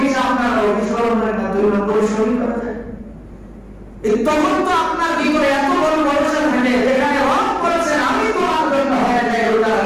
আপনার অফিস কর্মচারীর মাধ্যমে পরিশ্রম করা যায় তখন তো আপনার ভিতরে এত বড় ভরসা থাকে যেখানে রব করেছেন আমি তোমার জন্য হয়ে যাই রোজা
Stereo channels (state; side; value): identical; both; correlation 1.00